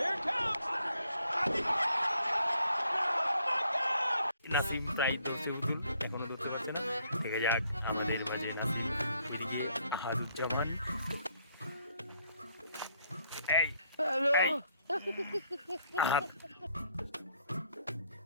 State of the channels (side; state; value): both; inverted; correlation -0.69